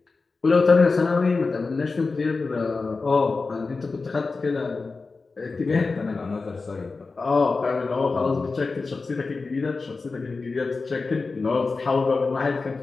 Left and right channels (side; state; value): right; quieter; 4.1 dB